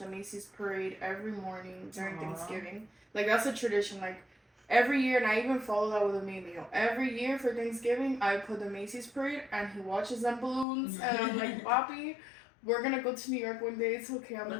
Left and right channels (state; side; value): drops out; right; at 10.7 s